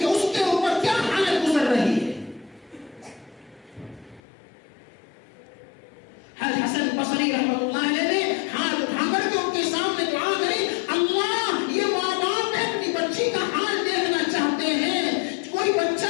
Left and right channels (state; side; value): drops out; right; at 4.2 s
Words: اس کے اوپر کیا حالت گزر رہی ہے. حسن بصری رحمۃ اللہ علیہ نے ہاتھ اٹھا کر کے ان کے سامنے دعا کری, اللہ یہ ماں باپ اپنی بچی کا حال دیکھنا چاہتے ہیں. کوئی بچہ